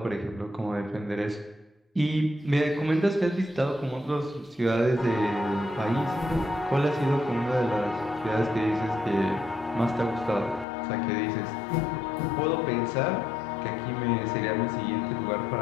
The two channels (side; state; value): right; drops out; at 10.7 s